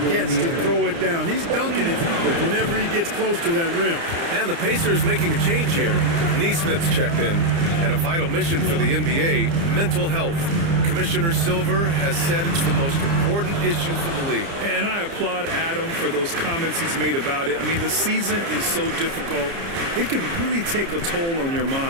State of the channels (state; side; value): late; left; 29 ms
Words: gets to throw it down. He's dunking it whenever he gets close to that rim. And the Pacers making a change here. Neesmith's checked in. And a vital mission for the NBA, mental health. Commissioner Silver has said it's the most important issue for the league. And I applaud Adam for those comments he's made about it. I mean, the season is so difficult. It can really take a toll on your